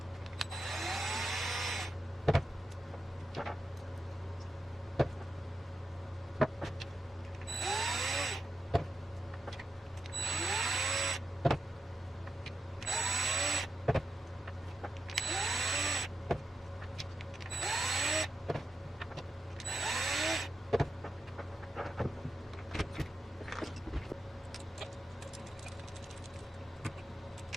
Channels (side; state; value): both; normal; correlation 0.88